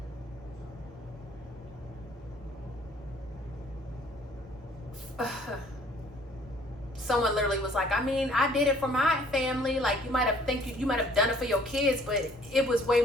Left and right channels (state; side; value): normal; both; correlation 0.58